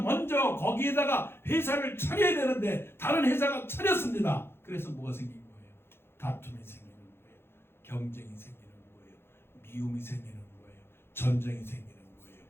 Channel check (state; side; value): late; right; 0.11 ms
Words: 먼저 거기에다가 회사를 차려야 되는데 다른 회사가 차렸습니다. 그래서 뭐가 생긴 거예요? 다툼이 생기는 거예요. 경쟁이 생기는 거예요. 미움이 생기는 거예요. 전쟁이 생기는 거예요.